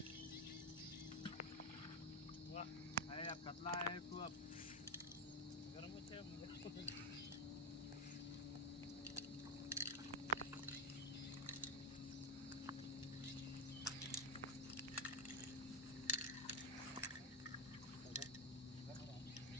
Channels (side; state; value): both; normal; correlation 0.05